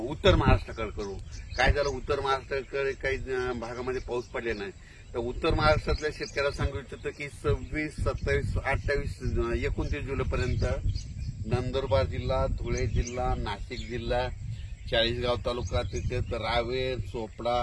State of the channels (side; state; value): both; identical; correlation 1.00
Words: महाराष्ट्राकडे करू. काय झालं, उत्तर महाराष्ट्राकडे काही भागामध्ये पाऊस पडले नाही. तर उत्तर महाराष्ट्रातल्या शेतकऱ्याला सांगू इच्छितो की 26, 27, 28, 29 जुलैपर्यंत नंदुरबार जिल्हा, धुळे जिल्हा, नाशिक जिल्हा, चाळीसगाव तालुका, तिथे रावेर, चोपडा,